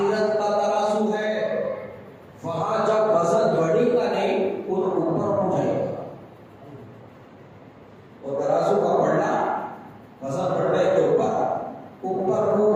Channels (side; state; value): both; identical; correlation 1.00